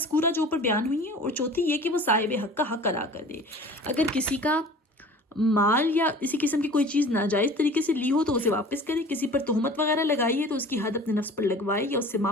جو اوپر بیان ہوئی ہیں، اور چوتھی یہ کہ وہ صاحب حق کا حق ادا کر دے۔ اگر کسی کا مال یا اسی قسم کی کوئی چیز ناجائز طریقے سے لی ہو تو اسے واپس کرے، کسی پر تہمت وغیرہ لگائی ہے تو اس کی حد اپنے نفس پر لگوائے یا اس سے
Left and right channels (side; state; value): both; normal; correlation 0.43